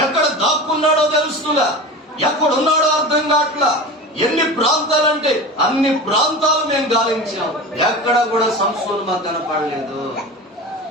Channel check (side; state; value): both; normal; correlation 0.31